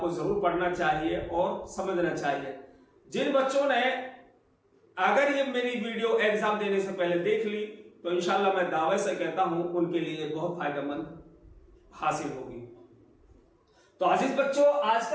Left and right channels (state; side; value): identical; both; correlation 1.00